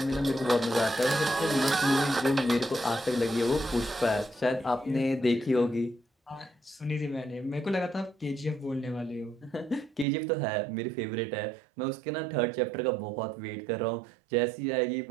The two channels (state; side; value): drops out; left; at 10.1 s